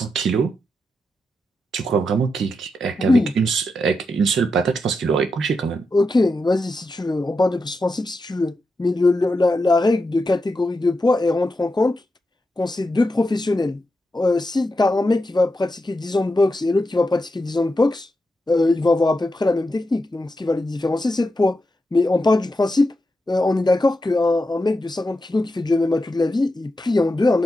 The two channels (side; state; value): both; normal; correlation 0.87